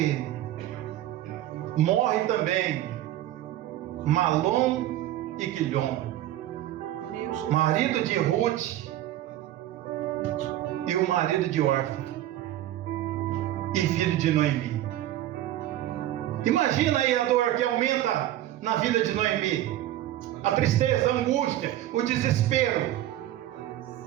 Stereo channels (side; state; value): left; quieter; 13.5 dB